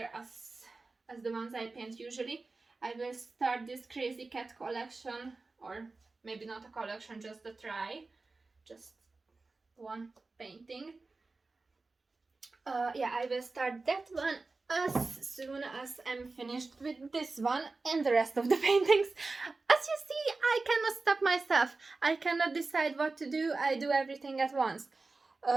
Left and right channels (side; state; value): left; quieter; 3.7 dB